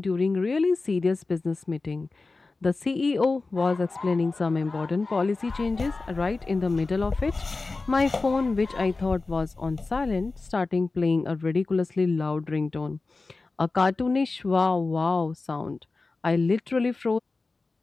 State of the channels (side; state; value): right; quieter; 3.7 dB